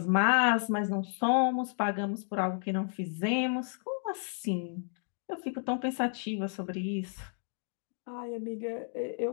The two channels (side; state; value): right; silent; 56 dB below the other